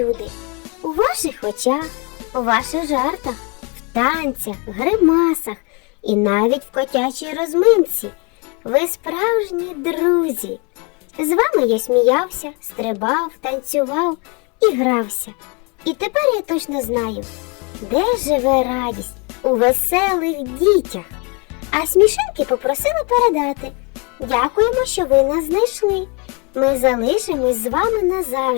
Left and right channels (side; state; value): right; quieter; 32.3 dB